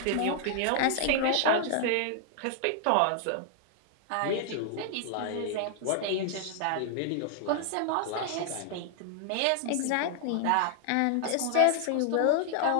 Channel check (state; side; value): different; both; correlation 0.00